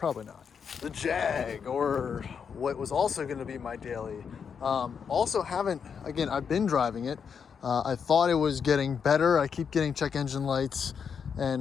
not. The Jag, or what was also going to be my daily. Also haven't. Again, I've been driving it. I thought it was getting better. I keep getting check engine lights and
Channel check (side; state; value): right; quieter; 6.7 dB